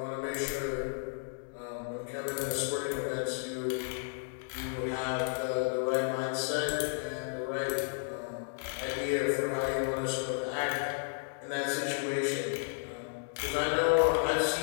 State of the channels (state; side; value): silent; right; digital silence